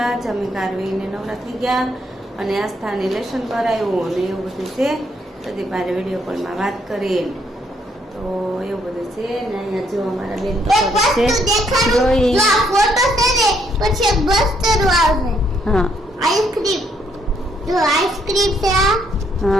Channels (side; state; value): both; normal; correlation 0.71